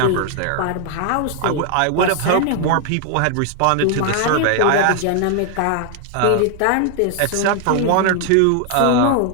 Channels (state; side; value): different; both; correlation 0.00